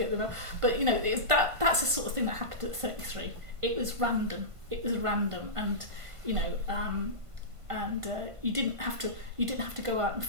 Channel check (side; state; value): left; late; 1.5 ms